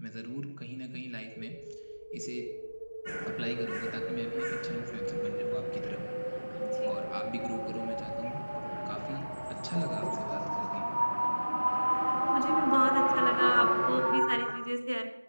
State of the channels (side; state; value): both; inverted; correlation -1.00